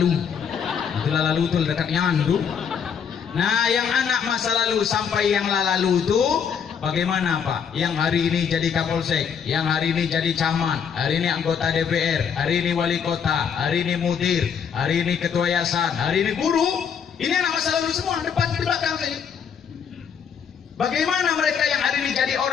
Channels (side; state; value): right; quieter; 7.2 dB